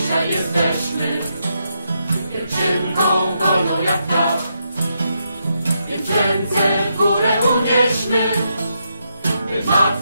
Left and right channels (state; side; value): inverted; both; correlation -0.81